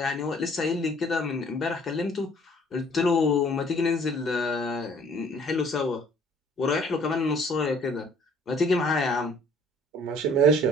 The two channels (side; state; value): both; normal; correlation 0.56